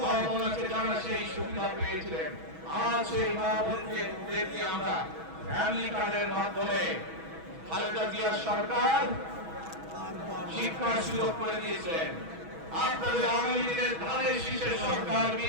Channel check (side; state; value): left; late; 6.2 ms